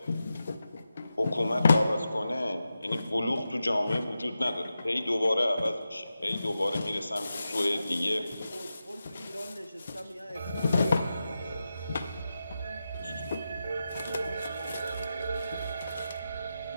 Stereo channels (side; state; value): both; inverted; correlation -0.91